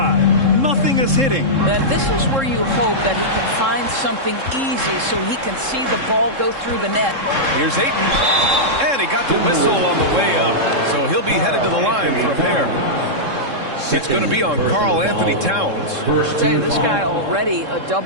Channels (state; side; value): late; left; 3.7 ms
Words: Nothing is hitting. And this is where you hope that he can find something easy so he can see the ball go through the net. Here's Ayton. And he got the whistle on the way up. So he'll be headed to the line for a pair. It's going to be on Karl Anthony Towns. I'll tell you, this guy already a